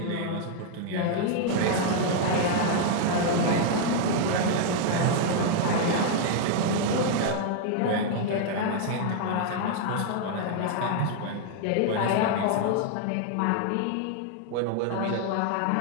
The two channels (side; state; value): both; different; correlation 0.00